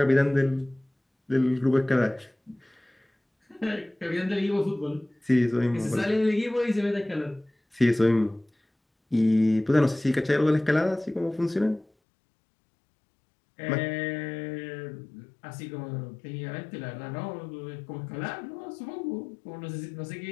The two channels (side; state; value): right; drops out; at 11.9 s